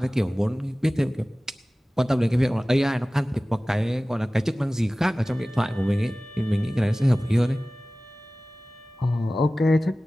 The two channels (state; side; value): normal; both; correlation 0.97